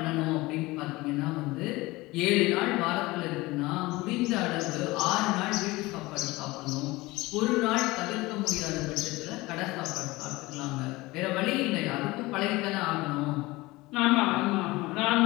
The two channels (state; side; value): quieter; right; 20.9 dB